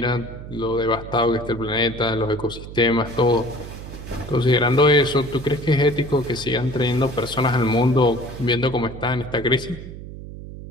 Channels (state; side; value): noise; right; hum, 12 dB below the sound